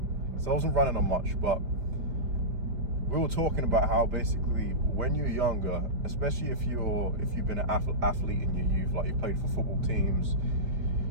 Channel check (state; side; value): late; left; 5.0 ms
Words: So I wasn't running on much, but we were talking about how basically when you're younger, especially if you've been an athlete in your youth, like you played for football teams,